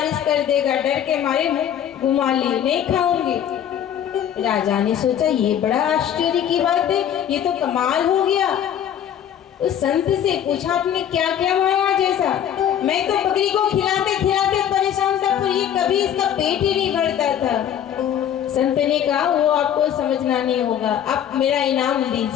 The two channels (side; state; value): right; quieter; 9.7 dB